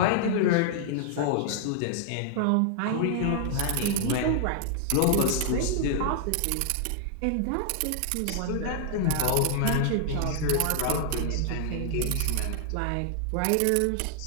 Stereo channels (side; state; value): both; different; correlation -0.01